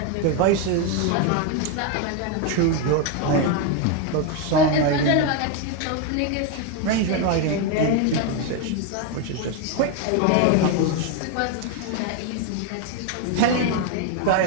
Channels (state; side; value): different; both; correlation 0.02